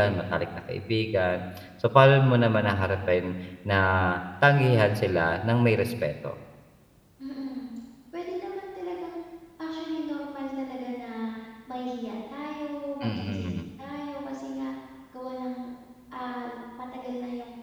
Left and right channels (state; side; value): identical; both; correlation 1.00